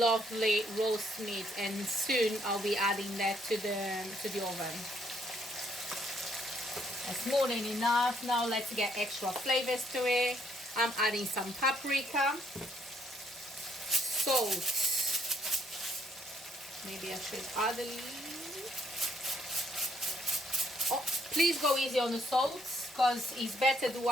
roast meat, and soon I'll be adding that to the oven. That's more than enough. Now let's get extra flavors to it. I'm adding some paprika, salt. Maybe I should add a little. Oh, please go easy on the salt, because it's better to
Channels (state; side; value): normal; both; correlation 0.69